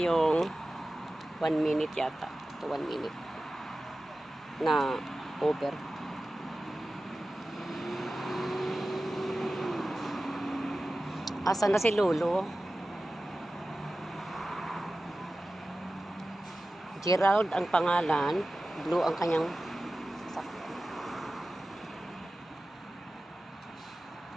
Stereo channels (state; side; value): normal; both; correlation 0.95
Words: 1 minute yata. 1 minute na Uber. Asan na si Lolo? Gerald ang pangalan, Blue ang kanyang sasakyan.